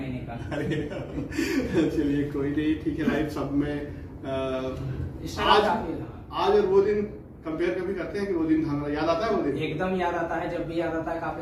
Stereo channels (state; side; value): identical; both; correlation 1.00